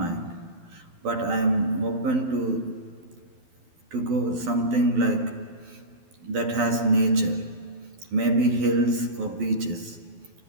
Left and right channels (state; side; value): late; left; 12 ms